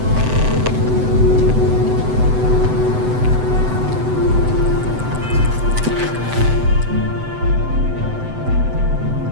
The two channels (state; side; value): late; left; 7.9 ms